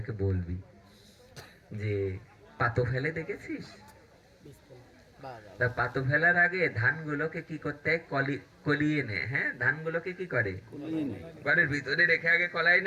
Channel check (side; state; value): both; identical; correlation 1.00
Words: বলবি যে পাতো ফেলে দেখেছিস? তা পাতো ফেলার আগে ধানগুলোকে কি করতে হয়? কলিয়ে নেয়। হ্যাঁ, ধানগুলোকে কি করে? ঘরের ভিতরে রেখে আগে কলাই